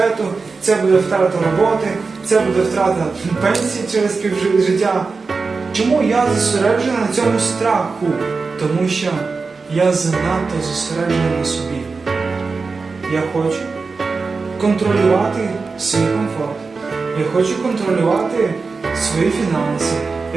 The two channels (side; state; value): left; quieter; 4.4 dB